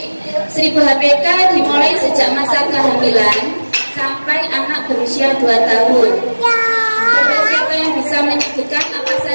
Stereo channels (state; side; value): inverted; both; correlation -1.00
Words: HPK dimulai sejak masa kehamilan sampai anak berusia 2 tahun. Coba siapa yang bisa menyebutkan apa